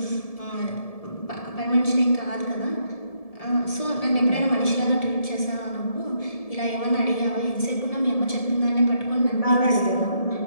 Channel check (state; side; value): late; right; 1.7 ms